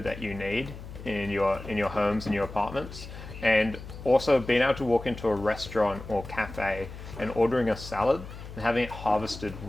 that you need in your homes, in your apartments. And also being able to walk into a restaurant or cafe and ordering a salad and having it harvested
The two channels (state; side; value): noise; left; hum, 13 dB below the sound